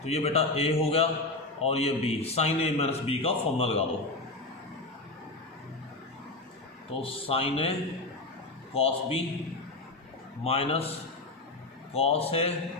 तो ये बेटा ए हो गया और ये b, sine a minus b का फॉर्मूला लगा दो, तो sine a cos b minus cos a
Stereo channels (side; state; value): right; quieter; 3.0 dB